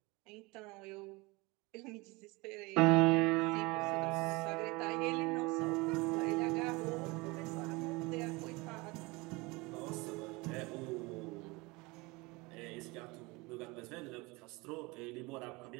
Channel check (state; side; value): quieter; left; 24.7 dB